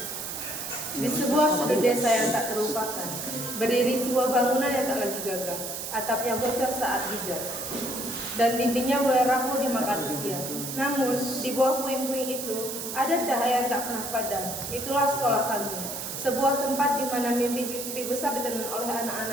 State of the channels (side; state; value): right; noise; hiss, 6 dB below the sound